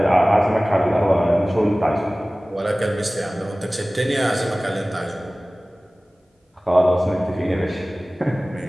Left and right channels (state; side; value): normal; both; correlation 0.98